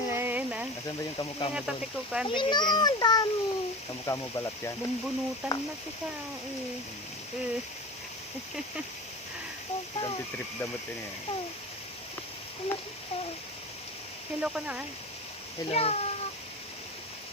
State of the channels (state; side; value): normal; both; correlation 0.31